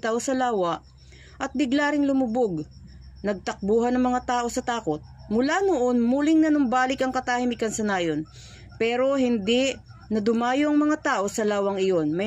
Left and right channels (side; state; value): both; identical; correlation 1.00